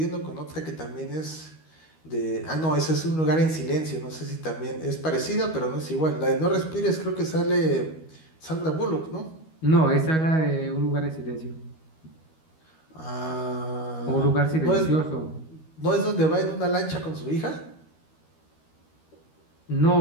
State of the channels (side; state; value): right; late; 13 ms